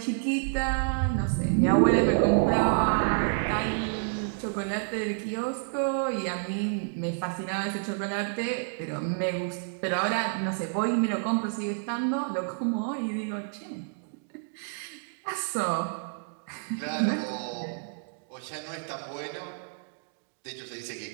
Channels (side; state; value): left; silent; digital silence